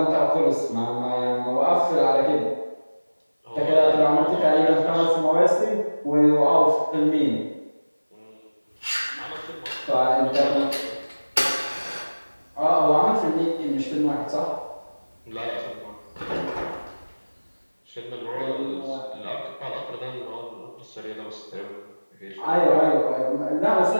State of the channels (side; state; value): both; inverted; correlation -1.00